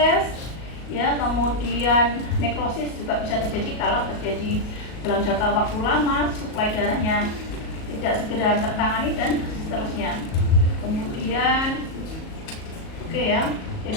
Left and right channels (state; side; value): late; right; 37 ms